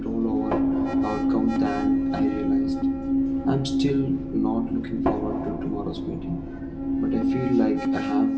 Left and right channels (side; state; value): both; identical; correlation 1.00